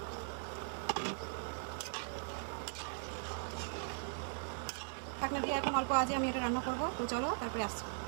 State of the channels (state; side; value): silent; left; 51 dB below the other